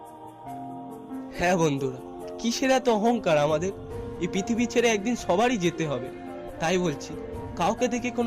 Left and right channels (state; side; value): identical; both; correlation 1.00